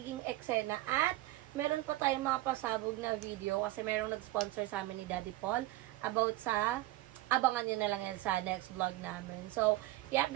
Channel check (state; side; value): quieter; left; 17.3 dB